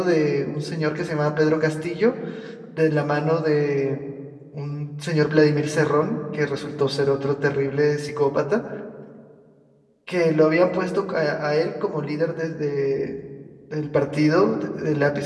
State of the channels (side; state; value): both; identical; correlation 1.00